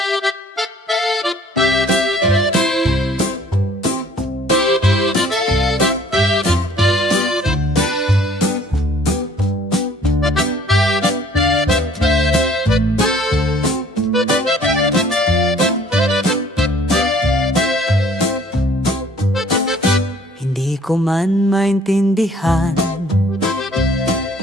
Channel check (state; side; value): normal; both; correlation 0.56